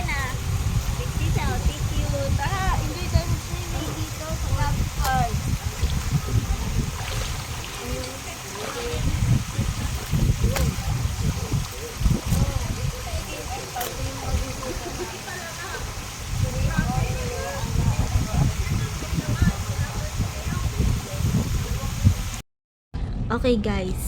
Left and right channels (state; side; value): identical; both; correlation 1.00